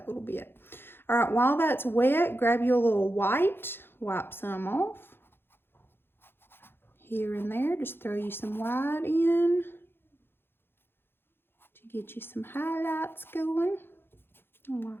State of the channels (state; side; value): late; right; 0.10 ms